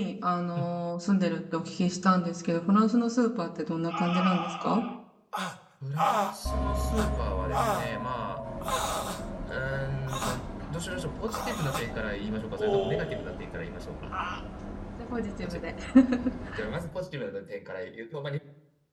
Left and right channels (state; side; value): identical; both; correlation 1.00